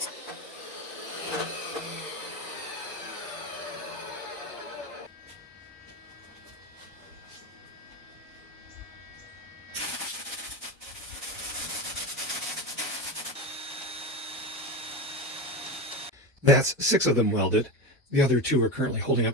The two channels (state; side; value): normal; both; correlation 0.20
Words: That's 6 of them welded. The other 2 are currently holding